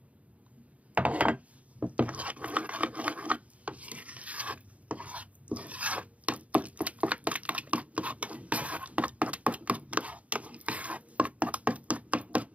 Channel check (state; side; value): late; left; 0.067 ms